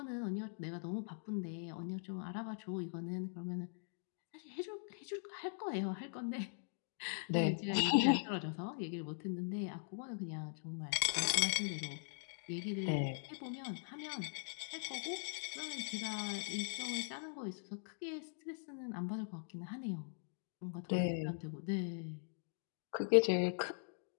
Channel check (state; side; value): silent; right; digital silence